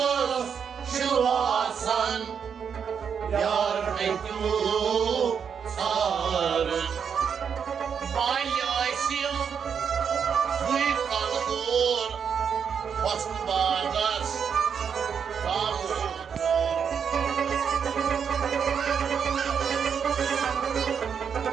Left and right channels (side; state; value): left; quieter; 7.1 dB